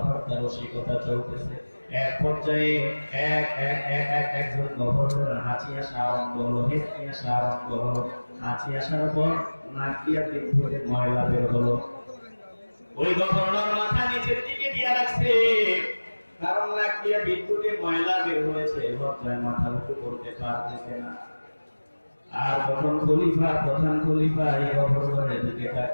রসিকতা চলতেছে। এক পর্যায়ে একজন গভর্নর হাঁচি আসা আরম্ভ হলো, হেঁচকি আসা আরম্ভ হলো। হাঁচি আসার পর নাক দিয়া পিঠ থেকে ময়লা বের হলো। ওই গভর্নর মাথা নিচের দিকে দিয়ে রাখছে, কারণ নাক দিয়ে বিদ্যুতে ময়লা বের হয়েছে, লজ্জায় মাথা উঁচু করতে পারতেছে না। আর তখন খলিফা, প্রধান খলিফা এই গভর্নরের দিকে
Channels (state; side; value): inverted; both; correlation -1.00